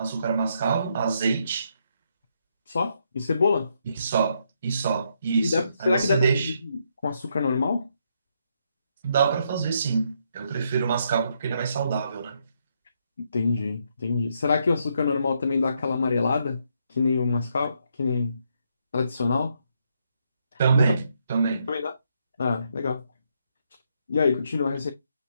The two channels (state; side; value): inverted; both; correlation -0.76